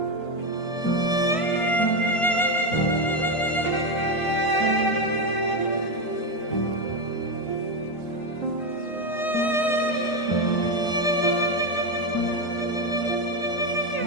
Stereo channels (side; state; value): right; late; 1.5 ms